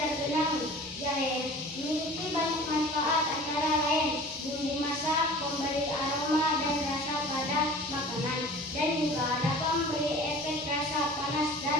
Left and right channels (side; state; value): both; normal; correlation 0.42